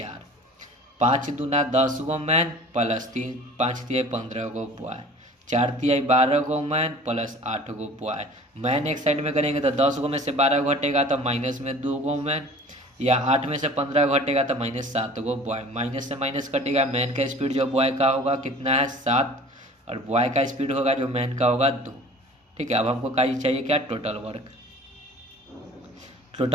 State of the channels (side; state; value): both; normal; correlation 0.45